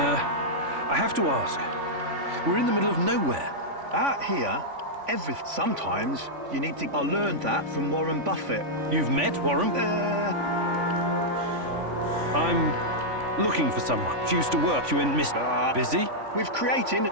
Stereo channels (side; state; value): left; late; 3.5 ms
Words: have to ask. We're in the middle of nowhere. Out here, sometimes you need to... I learned that from Warren Buffett. You've met Warren? I'm looking for someone. She used to work. You in Mr. Busy? With creating